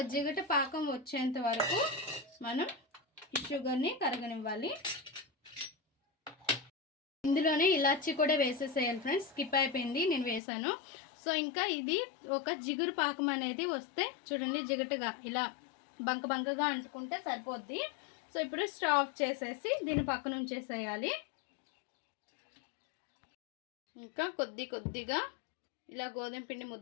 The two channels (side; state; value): right; drops out; at 10.4 s